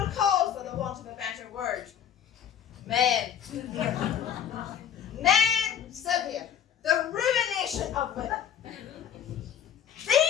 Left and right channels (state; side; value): quieter; right; 9.4 dB